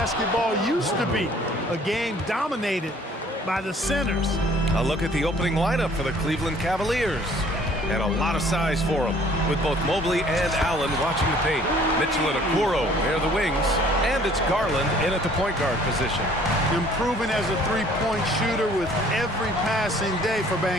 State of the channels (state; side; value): normal; both; correlation 0.56